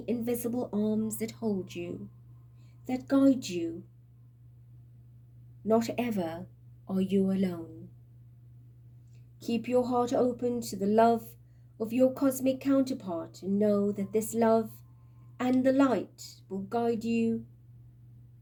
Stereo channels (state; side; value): identical; both; correlation 1.00